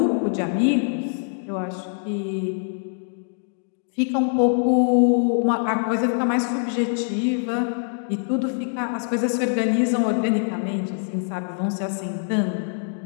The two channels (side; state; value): right; silent; digital silence